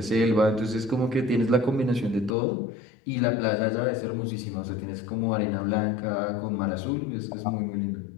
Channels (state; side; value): drops out; right; at 2.3 s